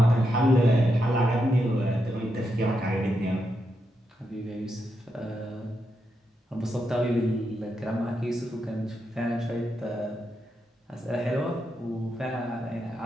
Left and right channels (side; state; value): both; normal; correlation 0.84